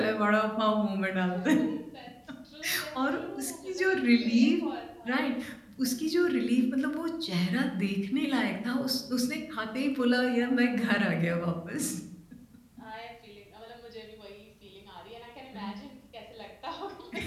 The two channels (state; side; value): identical; both; correlation 1.00